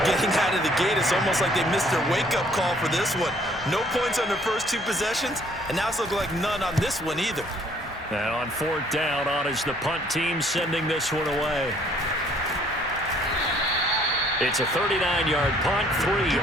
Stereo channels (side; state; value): both; normal; correlation 0.61